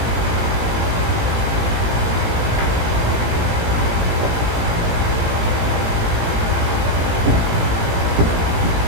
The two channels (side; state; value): left; late; 18 ms